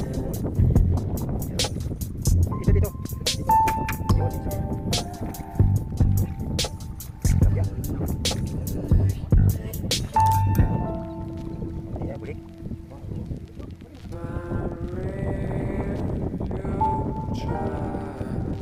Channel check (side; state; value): both; identical; correlation 1.00